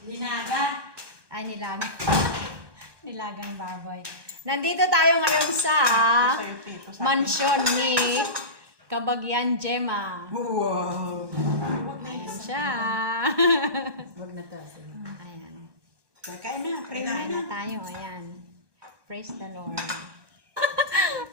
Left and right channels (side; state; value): left; late; 1.2 ms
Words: Linaga. Ay, nilagang baboy. Nandito tayo ngayon sa Sa'yo, te, ito sa akin. mansyon ni Kabagyan Gemma. Wow! Ayan siya. Huwag na to. Ayan. Kakain na. Pray Kain na. na tayo. Ayan. Praise the Lord.